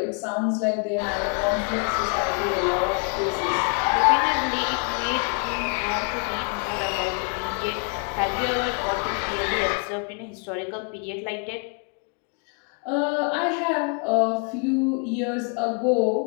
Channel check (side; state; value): right; quieter; 38.7 dB